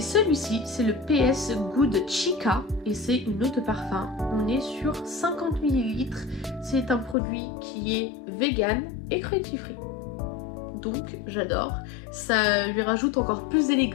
c'est le PS Good Chica et c'est une eau de parfum. On est sur 50 ml. C'est un produit qui est vegan et cruelty free. Donc j'adore, ça lui rajoute encore plus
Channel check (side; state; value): right; drops out; at 7.2 s